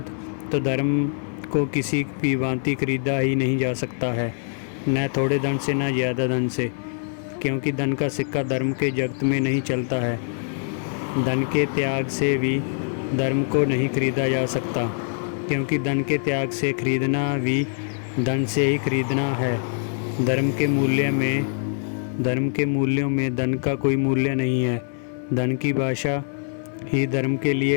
तो धर्म को किसी भी भांति खरीदा ही नहीं जा सकता है, न थोड़े धन से न ज़्यादा धन से, क्योंकि धन का सिक्का धर्म के जगत में नहीं चलता है। धन के त्याग से भी धर्म को नहीं खरीदा जा सकता, क्योंकि धन के त्याग से खरीदना भी धन से ही खरीदना है। धर्म के मूल्यों में धन का कोई मूल्य नहीं है। धन की भाषा ही धर्म के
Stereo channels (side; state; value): right; silent; 62 dB below the other